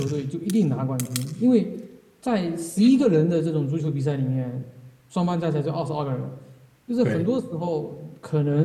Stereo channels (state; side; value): identical; both; correlation 1.00